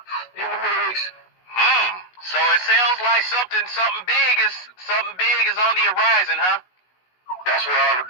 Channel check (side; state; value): right; late; 16 ms